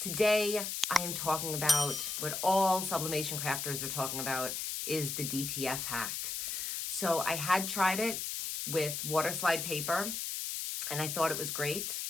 I am talking about what all sublimation crafters are talking about is the DTF hack. So I had tried it with water slide paper and I thought it was great.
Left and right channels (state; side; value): noise; left; hiss, 3 dB below the sound